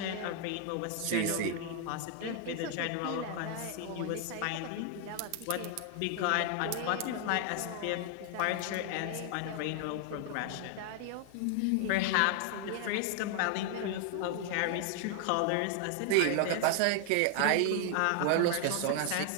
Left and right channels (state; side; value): different; both; correlation 0.00